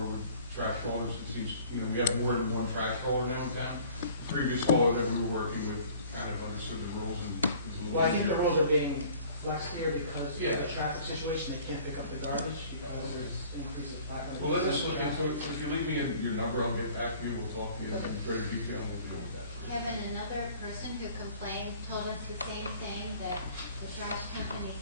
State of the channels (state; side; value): inverted; both; correlation -0.51